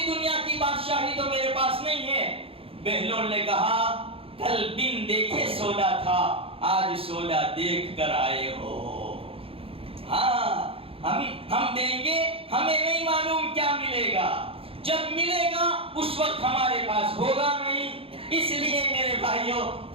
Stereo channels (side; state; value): left; late; 0.27 ms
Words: دنیا کی بادشاہی تو میرے پاس نہیں ہے. بہلول نے کہا کل بن دیکھے سودا تھا, آج سودا دیکھ کر آئے ہو. ہاں ہم دیں گے, ہمیں نہیں معلوم کیا ملے گا, جب ملے گا اس وقت ہمارے پاس ہوگا نہیں. اس لیے میرے بھائیوں